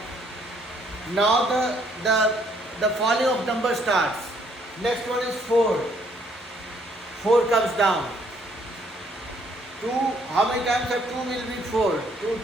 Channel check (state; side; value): normal; both; correlation 0.66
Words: Now the falling of number starts. Next one is 4. 4 comes down. 2, how many times of 2 will be 4? 2